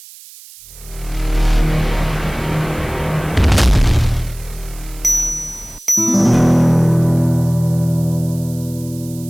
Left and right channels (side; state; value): right; noise; hiss, 20 dB below the sound